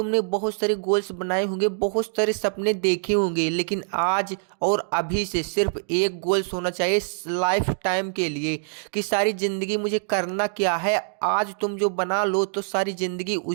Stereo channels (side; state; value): left; silent; digital silence